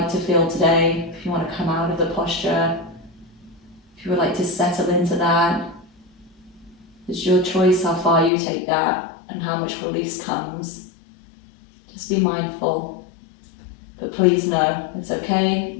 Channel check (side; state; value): right; drops out; at 8.3 s